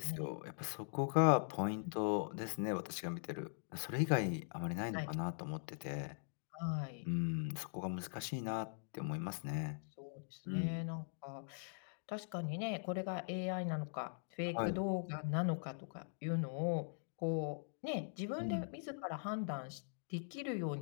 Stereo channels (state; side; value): silent; right; digital silence